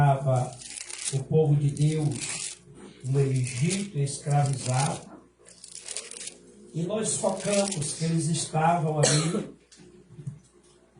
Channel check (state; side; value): identical; both; correlation 1.00